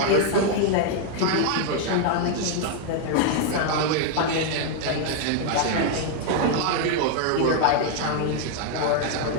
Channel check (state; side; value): different; both; correlation 0.00